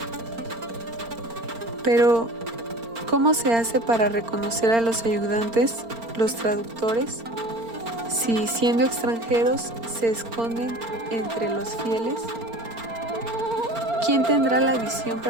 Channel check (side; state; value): left; late; 4.4 ms